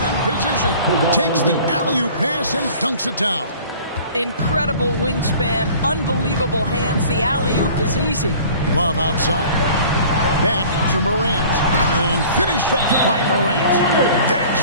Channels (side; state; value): both; inverted; correlation -0.47